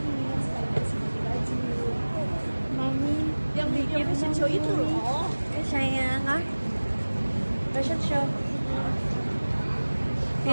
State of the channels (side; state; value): both; inverted; correlation -1.00